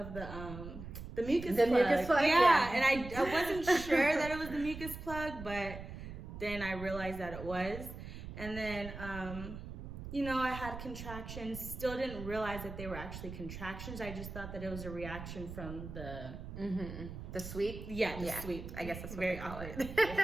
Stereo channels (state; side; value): noise; right; rumble, 10 dB below the sound